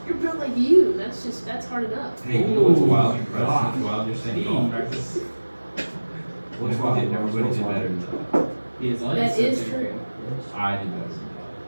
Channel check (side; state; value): both; inverted; correlation -1.00